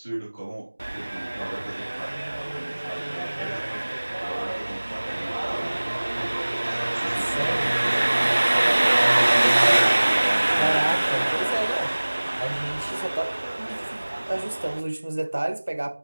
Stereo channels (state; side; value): inverted; both; correlation -1.00